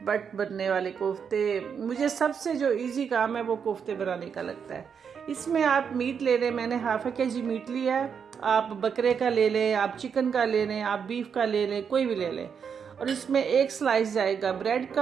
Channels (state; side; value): quieter; left; 6.9 dB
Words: बट बनने वाले कोफ्ते। मुझे सबसे जो इजी काम है वो कोफ्ते बनाने का लगता है। इसमें आप मीट ले लें, मैंने ½ kg मीट लिया है। आप बकरे का ले लें, आप चिकन का ले लें, आप बीफ का ले लें, कोई भी ले लें। और इसमें एक स्लाइस जाएगा ब्रेड